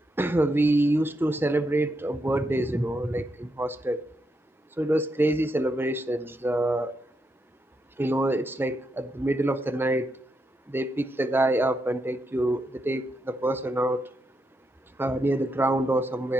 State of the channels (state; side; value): normal; both; correlation 0.82